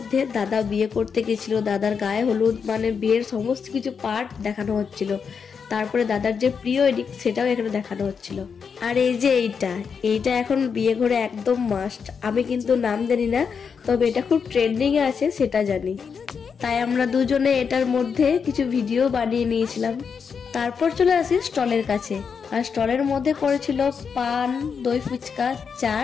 দাদা বিয়ে করতে গেছিল, দাদার গায়ে হলুদ মানে বিয়ের সমস্ত কিছু পার্ট দেখানো হচ্ছিল। তারপরে দাদার যে প্রি ওয়েডিং সেটাও এখানে দেখানো হচ্ছিল। আর এই যে এইটা এখন বিয়ে ঘরে একদম মাস্ট। আমি কিন্তু নাম জানি না, তবে এটা খুব ট্রেন্ডিংয়ে আছে সেটা জানি। তাই আমরা দুজনে এটার মধ্যে কিছু ভিডিও বানিয়ে নিয়েছিলাম। তারপর চলে আসি স্টলের কাছে, আর স্টলের মধ্যে করেছিল পান, দই ফুচকা,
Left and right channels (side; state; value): right; quieter; 6.2 dB